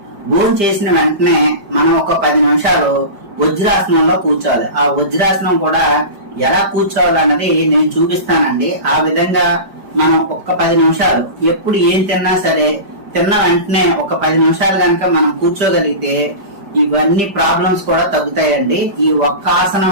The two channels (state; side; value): late; left; 5.0 ms